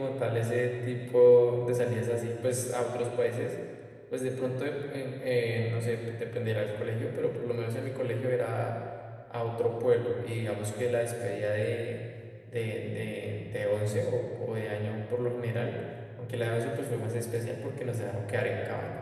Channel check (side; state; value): both; identical; correlation 1.00